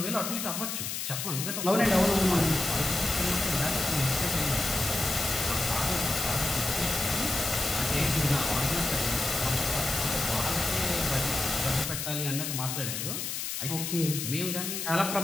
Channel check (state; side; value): noise; left; hiss, 4 dB below the sound